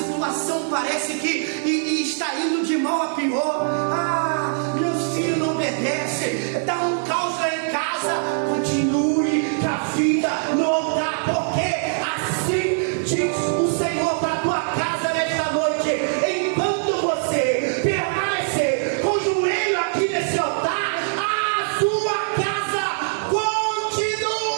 parece que está indo de mal a pior. Ah, meus filhos não obedecem. Dá um caos lá em casa. Continue com a vida no altar, porque assim diz o Senhor para a tua casa nesta noite. Enquanto você permanecer com o joelho aqui nesse altar, a sua casa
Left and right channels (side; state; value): left; silent; 59 dB below the other